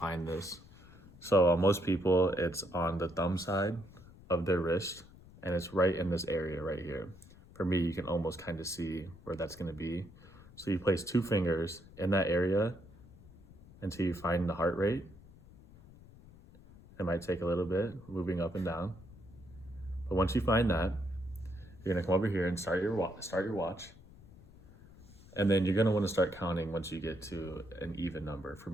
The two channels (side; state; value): left; noise; rumble, 21 dB below the sound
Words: this. So most people, it's on the thumb side of their wrist, and it's right in this area right here. For me, you can almost kind of see where that's gonna be. So you place 2 fingers in that area until you find the heart rate. It might take a little bit, moving up and down. But once you find that, you're gonna come over here and start your watch. And then you're gonna wanna start counting once you get to an even number. For